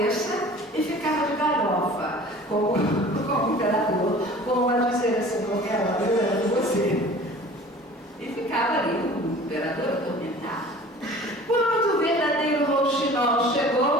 e ficava de galhofa, como o imperador, como a dizer assim, qualquer hora eu era você. E ficava ali o imperador atormentado. Quando o verdadeiro rouxinol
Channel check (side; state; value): both; normal; correlation 0.45